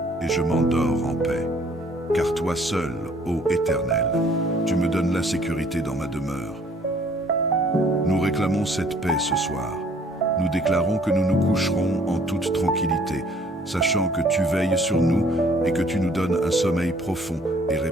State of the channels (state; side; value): normal; both; correlation 0.59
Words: et je m'endors en paix, car toi seul, ô Éternel, tu me donnes la sécurité dans ma demeure. » Nous réclamons cette paix ce soir. Nous déclarons que nous nous coucherons en toute tranquillité, sachant que tu veilles sur nous et que tu nous donnes un sommeil profond et